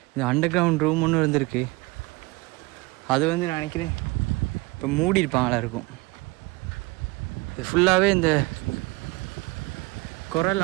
இந்த அண்டர் கிரவுண்ட் ரூம் ஒன்று இருந்திருக்கு. அது வந்து நான் நினைக்கிறேன் இப்போ மூடி இருப்பாங்களா இருக்கும். இது ஃபுல்லாகவே இந்த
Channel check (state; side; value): quieter; left; 23.9 dB